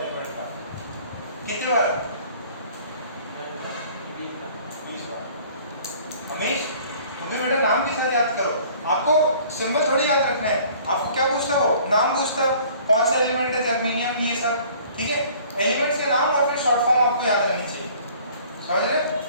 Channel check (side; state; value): both; inverted; correlation -0.52